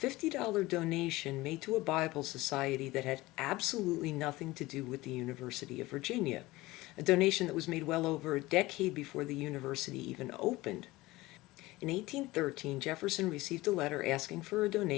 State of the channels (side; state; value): right; quieter; 19.5 dB